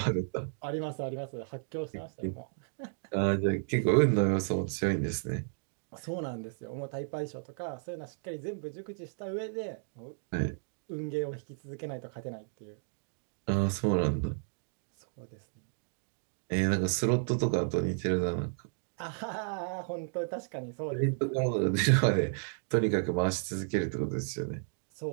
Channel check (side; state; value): left; silent; digital silence